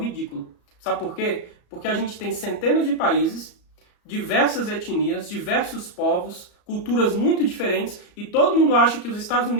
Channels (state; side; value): late; right; 34 ms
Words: Sabe por quê? Porque a gente tem centenas de países, diversas etnias, diversos povos, culturas muito diferentes. E todo mundo acha que os Estados